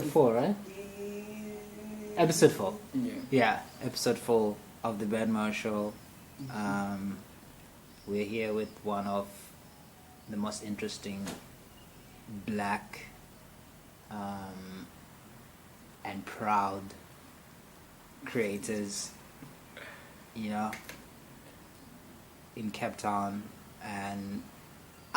4, right? Episode 4. Yeah. Yeah, episode 4 of the Ben Moyo Show. We're here with one of the most interesting black and proud creators, you know, in Capetown and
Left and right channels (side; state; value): both; identical; correlation 1.00